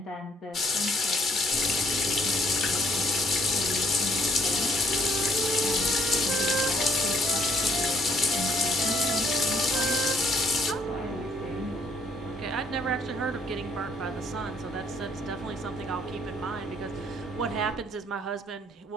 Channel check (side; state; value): both; normal; correlation 0.64